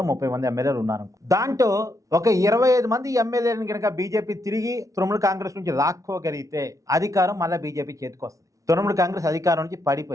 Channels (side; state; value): left; late; 0.16 ms